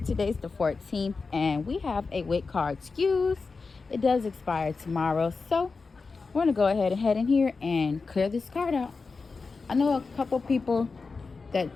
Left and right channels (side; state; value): right; quieter; 4.4 dB